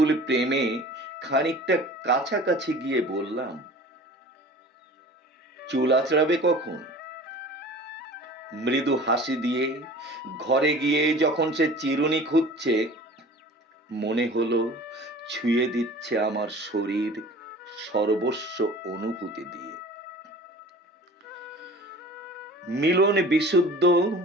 প্রেমে খানিকটা কাছাকাছি গিয়ে বললাম, চুল আঁচড়াবে কখন? মৃদু হাসি দিয়ে ঘরে গিয়ে যখন সে চিরুনি খুঁজছে, মনে হলো ছুঁয়ে দিচ্ছে আমার শরীর সর্বস্ব অনুভূতি দিয়ে। মিলন বিশুদ্ধ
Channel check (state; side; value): normal; both; correlation 0.43